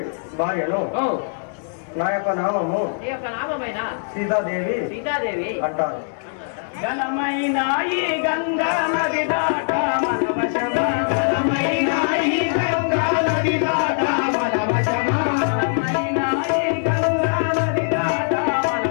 భార్యను నా యొక్క నామము సీతాదేవి అంటారు. గలమైన ఈ గంగా నది దాట మన వశమా, గలమైన ఈ గంగా నది దాట మన వశమా, గలమైన ఈ గంగా నది దాట మన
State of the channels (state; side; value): silent; right; digital silence